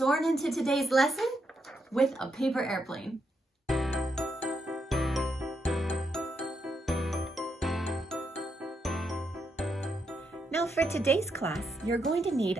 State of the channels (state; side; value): normal; both; correlation 0.81